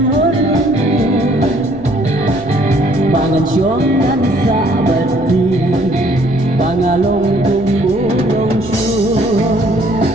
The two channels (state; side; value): noise; left; rumble, 17 dB below the sound